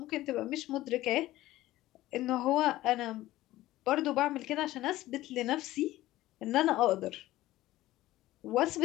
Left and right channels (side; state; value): right; quieter; 16.1 dB